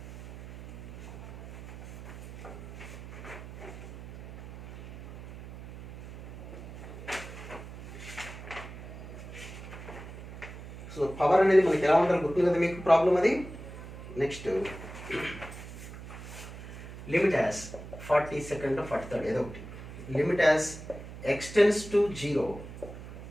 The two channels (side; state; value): right; noise; hum, 12 dB below the sound